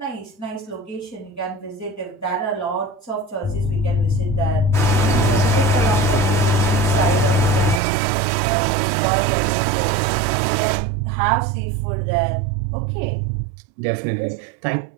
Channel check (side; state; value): left; drops out; at 7.8 s